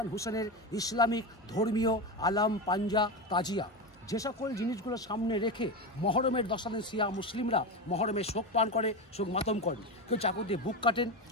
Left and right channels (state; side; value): normal; both; correlation 0.18